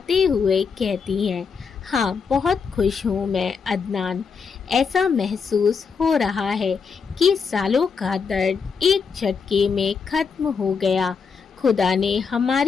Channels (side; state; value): right; quieter; 5.6 dB